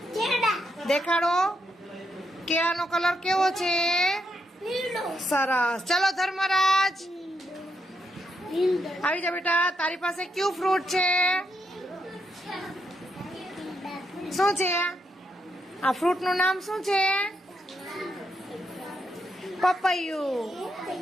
દેખાડો. કેળાનો કલર કેવો છે? સરસ. ચલો ધર્મરાજ આવી જા બેટા. તારી પાસે કયું ફ્રૂટ છે? શું છે આ ફ્રૂટ નું નામ? શું છે? પપૈયું.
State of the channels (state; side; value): normal; both; correlation 0.80